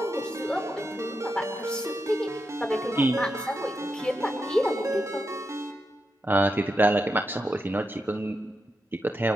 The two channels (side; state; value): both; normal; correlation 0.86